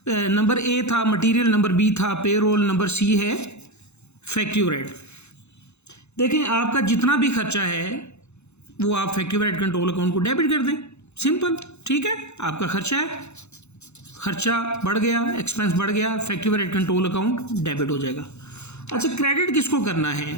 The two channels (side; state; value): right; late; 0.81 ms